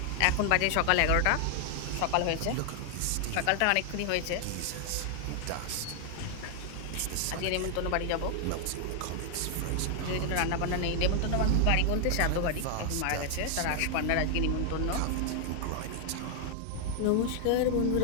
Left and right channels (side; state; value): both; different; correlation 0.00